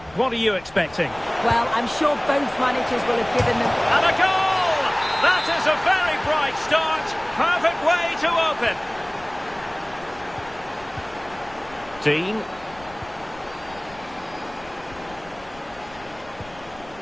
What are you expecting? Well, I'm sure both managers will have given them... And a goal! That is a very bright start. Perfect way to open. Dean.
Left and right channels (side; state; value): left; noise; rumble, 22 dB below the sound